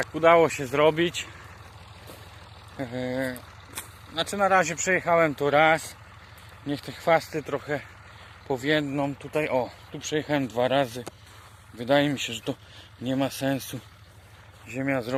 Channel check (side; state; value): both; identical; correlation 1.00